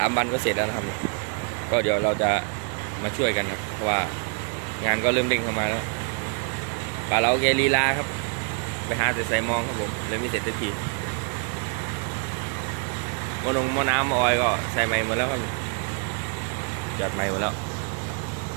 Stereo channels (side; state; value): left; quieter; 37.8 dB